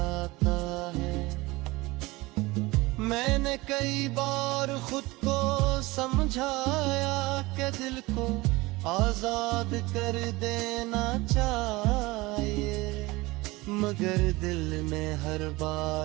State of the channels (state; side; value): quieter; left; 21.5 dB